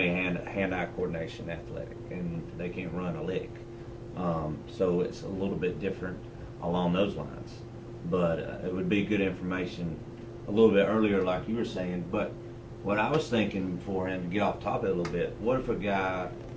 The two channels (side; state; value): both; identical; correlation 1.00